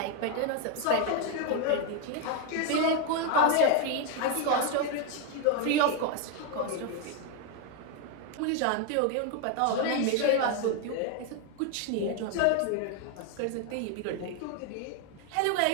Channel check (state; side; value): different; both; correlation 0.01